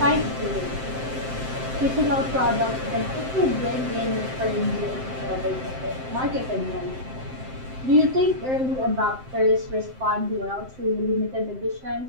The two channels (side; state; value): left; late; 7.7 ms